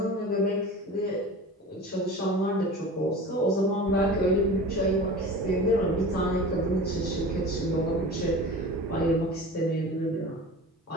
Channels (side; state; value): both; normal; correlation 0.36